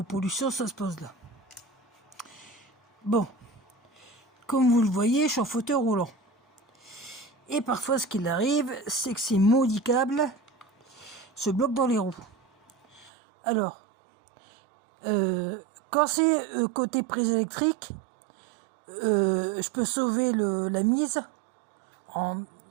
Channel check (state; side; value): drops out; left; at 13.1 s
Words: pollution, ça se pose là. Bon, comme vous le voyez, je suis en fauteuil roulant. Et parfois, ce qu'il arrive, c'est que ces maudits câbles se bloquent dans les roues. Alors, quand c'est côté prise électrique, je peux sauver la mise